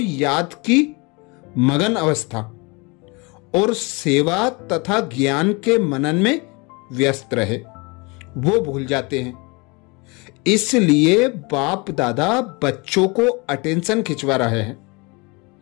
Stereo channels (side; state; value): right; quieter; 28.0 dB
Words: की मगन अवस्था और सेवा तथा ज्ञान के मनन में व्यस्त रहे, वो भूल जाते हैं। इसलिए बाप दादा बच्चों को अटेंशन खिंचवा रहे हैं